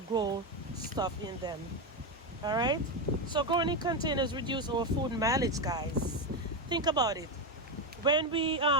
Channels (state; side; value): normal; both; correlation 0.11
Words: stuff in them. All right, so growing in containers reduce our food mileage, guys. Think about it. When we